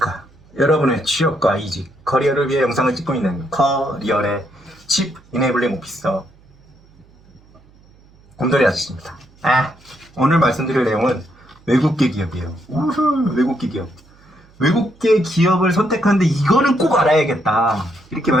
여러분의 취업과 이직, 커리어를 위해 영상을 찍고 있는 커리어의 칩 이네블링 오피서 곰돌이 아저씨입니다. 오늘 말씀드릴 내용은 외국계 기업이에요. 우후, 외국계 기업. 외국계 기업을 선택하는데 이거는 꼭 알아야겠다. 이렇게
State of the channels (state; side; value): noise; right; hum, 29 dB below the sound